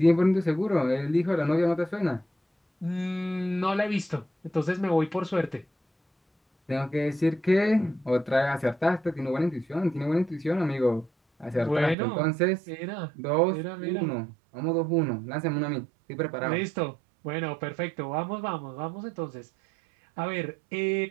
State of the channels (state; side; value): drops out; left; at 12.0 s